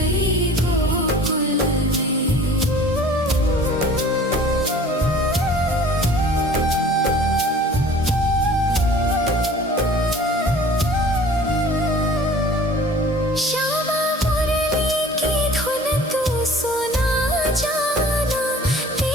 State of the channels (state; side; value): normal; both; correlation 0.47